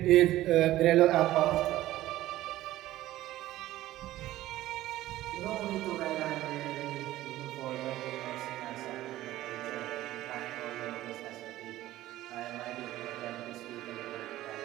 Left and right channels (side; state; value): left; quieter; 15.2 dB